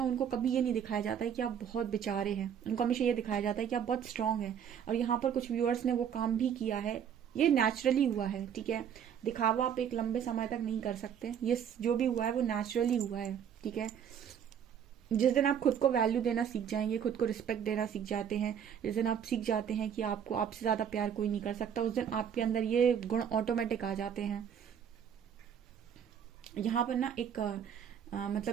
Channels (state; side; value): quieter; left; 8.5 dB